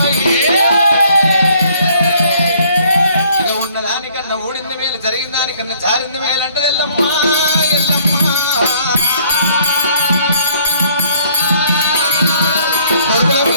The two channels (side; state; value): both; inverted; correlation -0.61